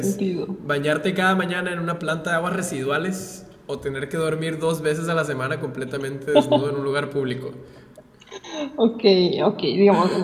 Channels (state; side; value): identical; both; correlation 1.00